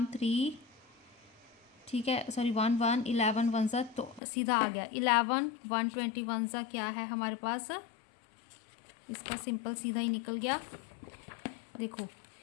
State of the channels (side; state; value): right; drops out; at 4.2 s